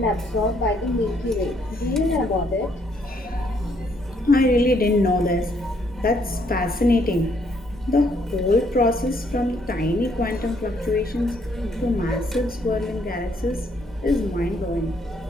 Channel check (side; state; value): both; normal; correlation 0.69